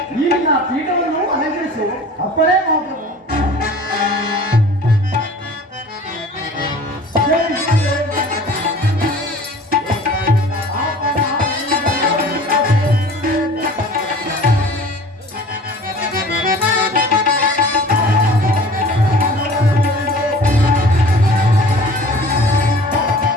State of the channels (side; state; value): both; normal; correlation 0.45